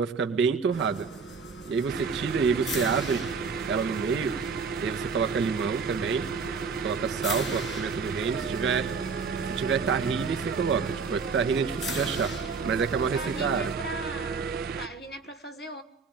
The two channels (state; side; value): quieter; left; 5.1 dB